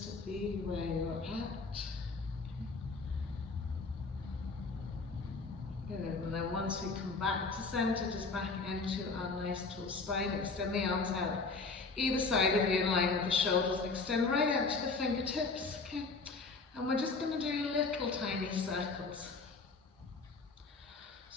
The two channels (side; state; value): right; quieter; 4.1 dB